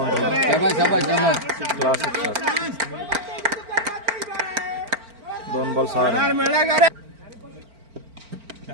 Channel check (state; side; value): late; left; 4.4 ms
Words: शाबाश शाबाश. Classic shot. 2 ball 6 run.